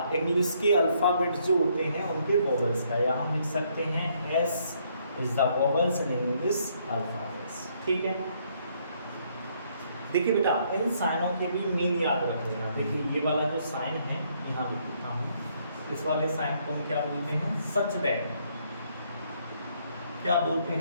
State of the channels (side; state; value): both; inverted; correlation -0.69